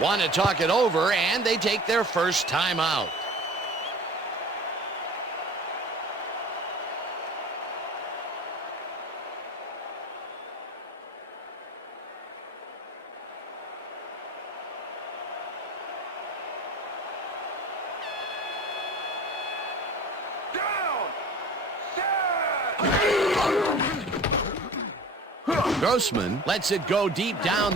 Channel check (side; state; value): both; normal; correlation 0.40